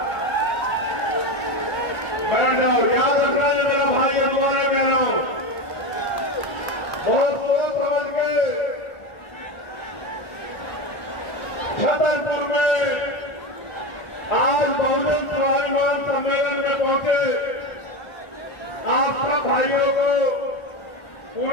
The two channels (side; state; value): right; late; 1.4 ms